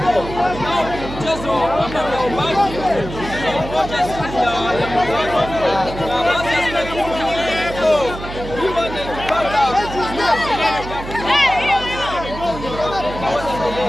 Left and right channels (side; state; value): right; noise; hum, 10 dB below the sound